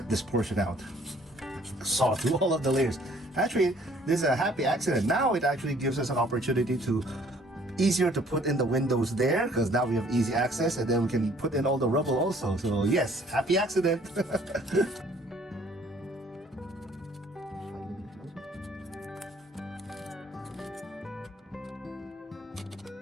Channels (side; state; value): both; normal; correlation 0.59